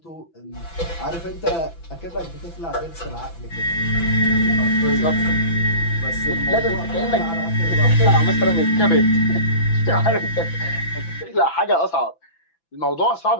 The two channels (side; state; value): right; late; 6.0 ms